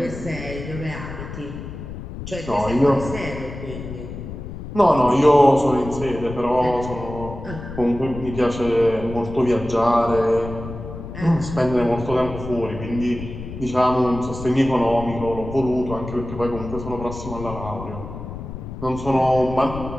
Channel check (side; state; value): left; noise; rumble, 10 dB below the sound